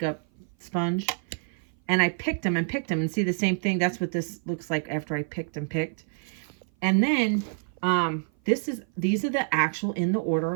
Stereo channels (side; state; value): left; silent; 56 dB below the other